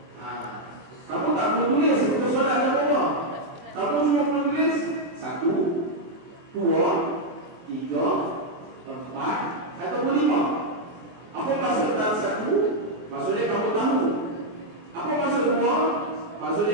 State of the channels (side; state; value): left; late; 24 ms